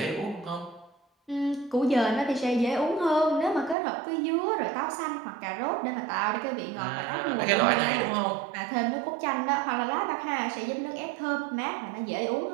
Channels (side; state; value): left; drops out; at 3.8 s